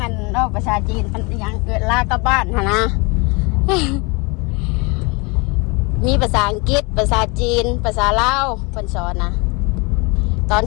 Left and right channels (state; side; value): quieter; right; 28.7 dB